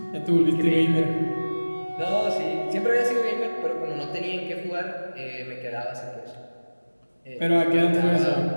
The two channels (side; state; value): both; inverted; correlation -1.00